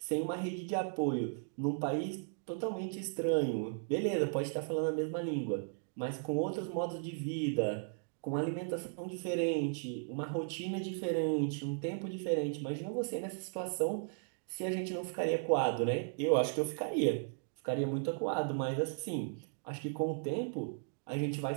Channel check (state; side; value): silent; left; digital silence